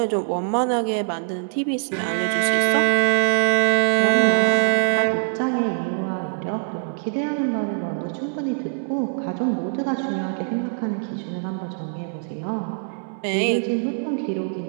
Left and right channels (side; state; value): left; silent; 64 dB below the other